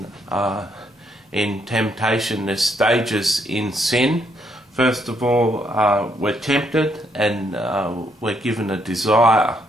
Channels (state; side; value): normal; both; correlation 0.73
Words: temptation. There's stages in sin. First of all, we're tempted and we're given a desire.